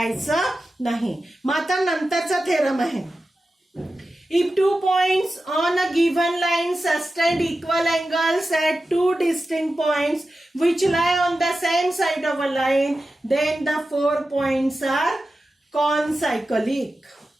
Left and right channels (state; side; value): normal; both; correlation 0.93